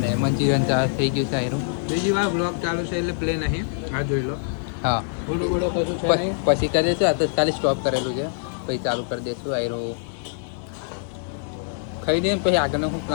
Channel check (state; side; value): silent; right; digital silence